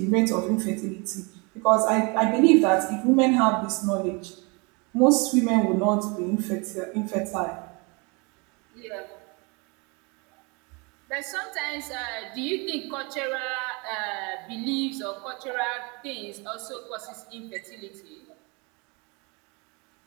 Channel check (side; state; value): left; quieter; 30.1 dB